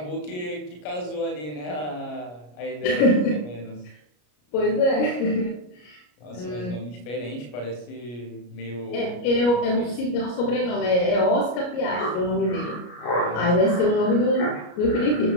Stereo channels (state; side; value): late; right; 33 ms